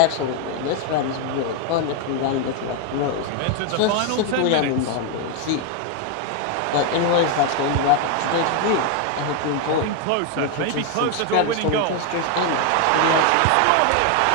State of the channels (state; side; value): different; both; correlation 0.01